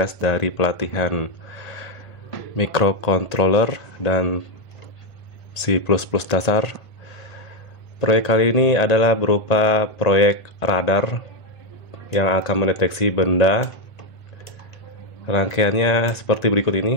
dari pelatihan microcontroller dan C++ dasar. Proyek kali ini adalah berupa proyek radar yang akan mendeteksi benda. Rangkaiannya seperti berikut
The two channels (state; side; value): late; right; 1.9 ms